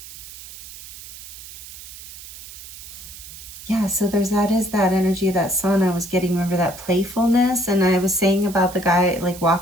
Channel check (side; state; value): right; noise; hiss, 14 dB below the sound